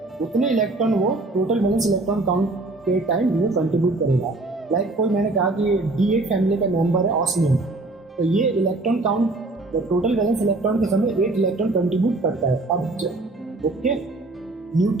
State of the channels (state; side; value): quieter; left; 3.0 dB